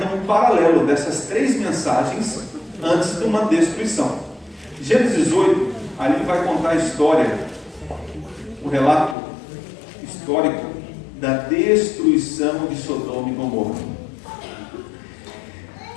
um paralelo dessas 3 mensagens antes de uma destruição. Gênesis 18, ali vai contar a história, o relato histórico da destruição de Sodoma e Gomorra.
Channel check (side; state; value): right; drops out; at 9.2 s